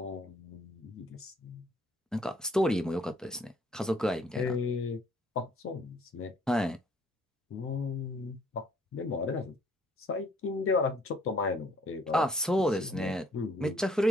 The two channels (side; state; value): both; normal; correlation 0.63